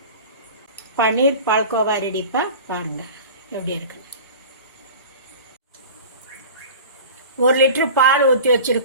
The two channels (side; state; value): both; inverted; correlation -0.37